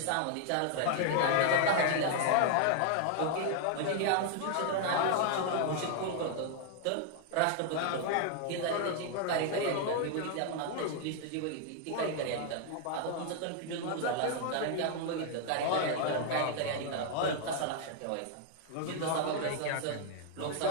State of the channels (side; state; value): both; different; correlation 0.00